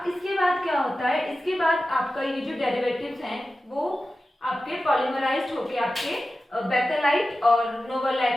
इसके बाद क्या होता है, इसके बाद आपका ये जो डेरिवेटिव्स हैं वो आपके पॉलीमराइज्ड होके आपके बेकेलाइट और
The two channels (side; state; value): both; normal; correlation 0.94